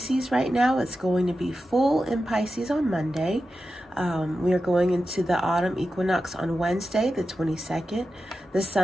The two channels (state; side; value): normal; both; correlation 0.91